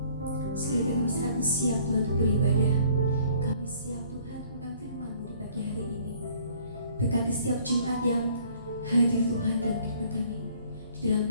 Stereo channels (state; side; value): inverted; both; correlation -0.58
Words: Sekali lagi kami saat ini siap Tuhan untuk beribadah. Kami siap Tuhan untuk memegang firman-Mu di pagi hari ini. Berkati setiap Jumat yang hadir Tuhan dalam kehidupan kami di dalam